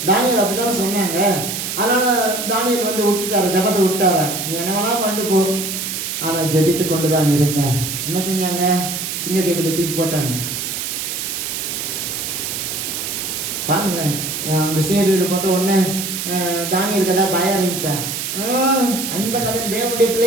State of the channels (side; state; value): right; noise; hiss, 4 dB below the sound